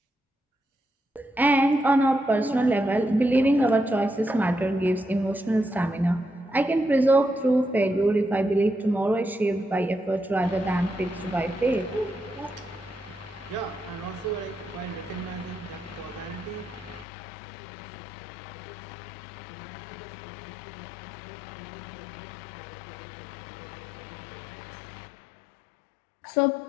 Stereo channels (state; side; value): drops out; right; at 17.1 s